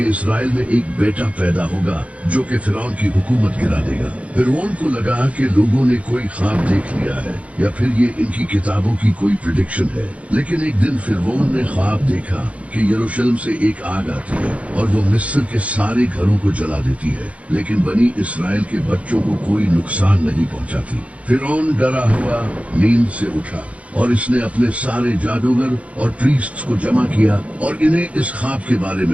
इसराइल में एक बेटा पैदा होगा जो कि फिरौन की हुकूमत गिरा देगा। फिरौन को लगा कि लोगों ने कोई ख्वाब देख लिया है या फिर ये इनकी किताबों की कोई प्रेडिक्शन है। लेकिन एक दिन फिरौन ने ख्वाब देखा कि यरूशलेम से एक आग आती है और वो मिस्र के सारे घरों को जला देती है, लेकिन बनी इसराइल के बच्चों को कोई नुकसान नहीं पहुंचाती। फिरौन डरा हुआ नींद से उठा और इसने अपने सारे जादूगर और प्रीस्ट्स को जमा किया और इन्हें इस ख्वाब के बारे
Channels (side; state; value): left; late; 0.065 ms